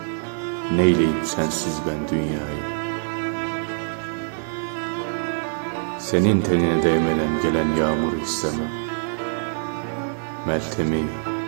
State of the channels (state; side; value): silent; left; 62 dB below the other